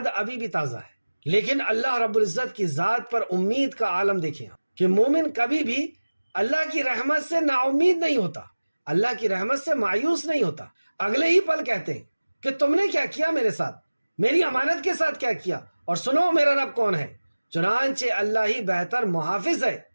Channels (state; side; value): inverted; both; correlation -1.00